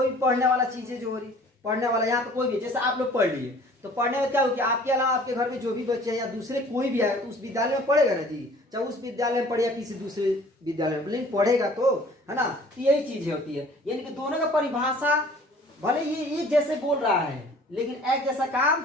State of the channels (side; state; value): both; normal; correlation 0.51